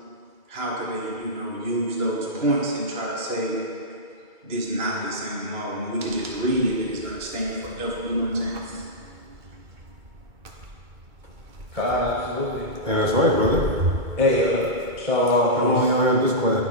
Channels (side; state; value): left; late; 2.3 ms